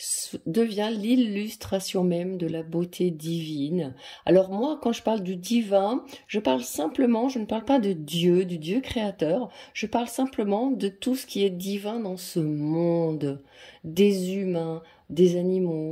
devient l'illustration même de la beauté divine. Alors moi, quand je parle du divin, je parle simplement, je ne parle pas de Dieu, du Dieu créateur, je parle simplement de tout ce qui est divin dans ce monde, des humains, des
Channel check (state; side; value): identical; both; correlation 1.00